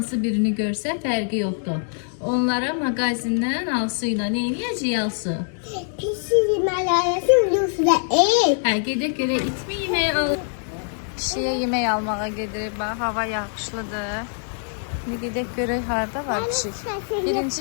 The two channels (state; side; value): silent; right; 57 dB below the other